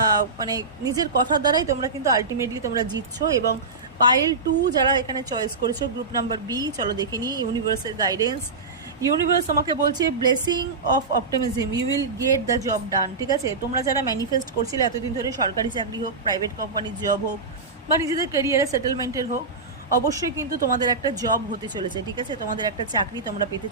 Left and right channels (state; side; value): quieter; left; 4.0 dB